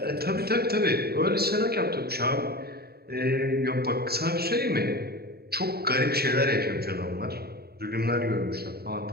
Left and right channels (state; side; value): late; left; 0.46 ms